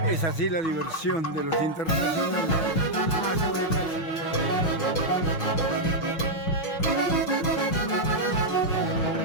Es así la diversión de los internacionales.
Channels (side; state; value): right; late; 6.1 ms